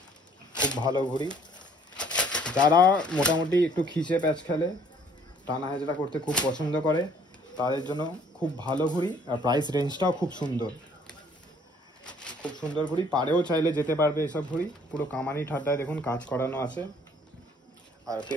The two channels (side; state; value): both; normal; correlation 0.60